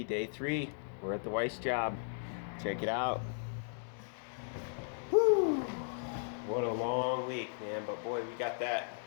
day 3. We're at the Weiss job. Check it out. Whew. What a long week, man. But boy, we got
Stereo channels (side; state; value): right; silent; digital silence